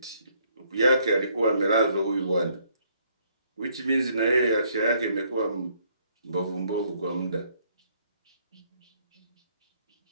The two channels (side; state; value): both; inverted; correlation -0.67